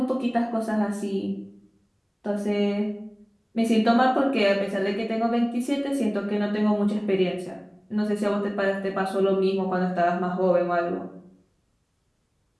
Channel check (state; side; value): identical; both; correlation 1.00